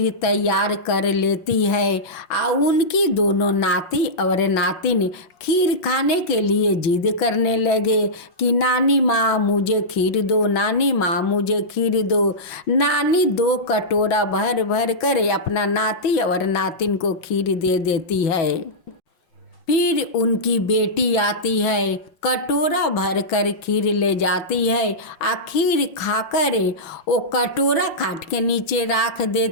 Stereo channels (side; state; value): right; late; 5.6 ms